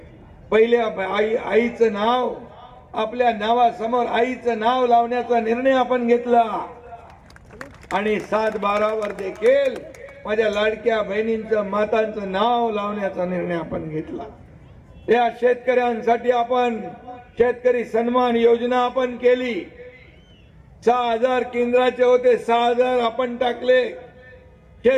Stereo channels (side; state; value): both; identical; correlation 1.00